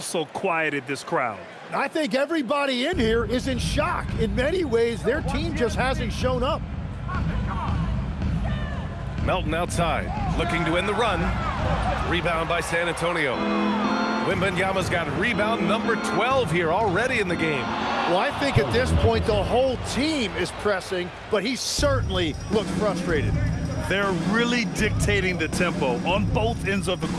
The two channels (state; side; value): identical; both; correlation 1.00